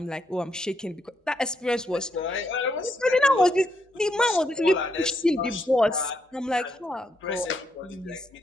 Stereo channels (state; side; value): normal; both; correlation 0.78